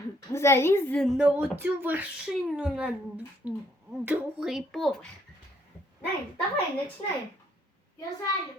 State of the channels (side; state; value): both; normal; correlation 0.68